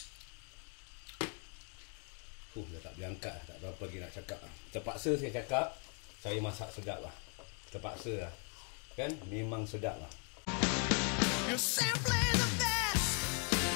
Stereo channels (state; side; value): quieter; right; 39.5 dB